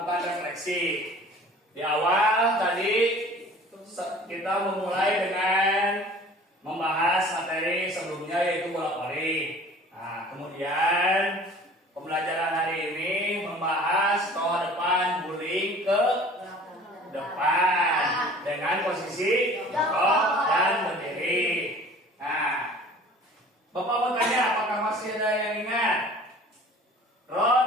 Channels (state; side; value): normal; both; correlation 0.46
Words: refleksi. Di awal tadi kita memulai dengan membahas materi sebelumnya yaitu bola voli. Nah, kemudian pembelajaran hari ini membahas toa depan guling ke depan dengan posisi jongkok dan berdiri. Nah, Bapak mau tanya apakah masih ada yang ingat?